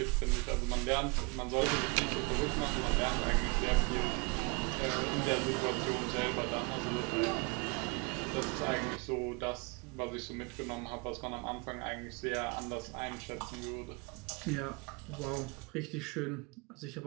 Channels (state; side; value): quieter; left; 30.3 dB